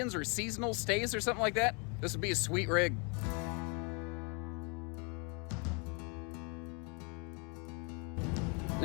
or seasonal stays or something like that, this would be a sweet rig.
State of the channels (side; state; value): right; quieter; 33.7 dB